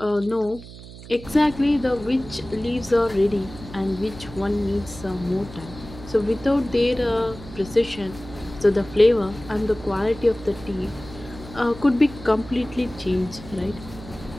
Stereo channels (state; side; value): noise; right; hum, 15 dB below the sound